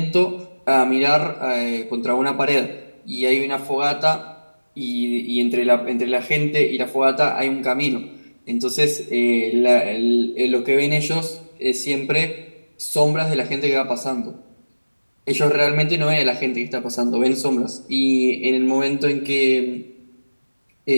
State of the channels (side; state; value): both; inverted; correlation -1.00